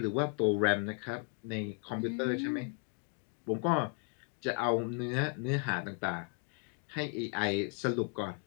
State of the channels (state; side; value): quieter; right; 38.0 dB